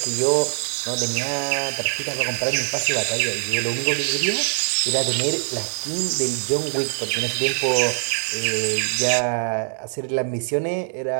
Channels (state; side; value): silent; left; digital silence